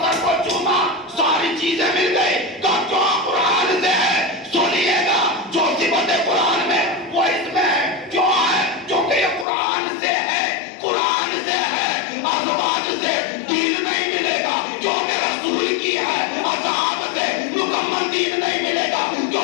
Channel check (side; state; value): right; drops out; at 9.5 s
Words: کو چوما ساری چیزیں مل گئی, تو کیوں قرآن سے ہے. سنیے گا, جو صفت قرآن میں وہ اس میں ہے. کیوں ہے؟ کیونکہ یہ قرآن سے ہے, قرآن سے ہے. ازواج سے دین نہیں ملے گا کیونکہ رسول کی ہے, اصحاب سے مکمل دین نہیں ملے گا